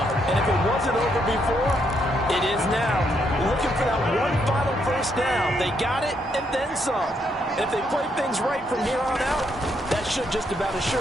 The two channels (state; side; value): normal; both; correlation 0.75